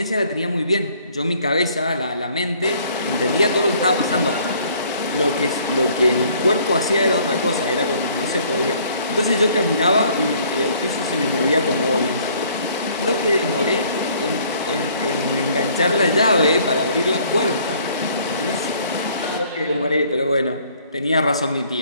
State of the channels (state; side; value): inverted; both; correlation -0.59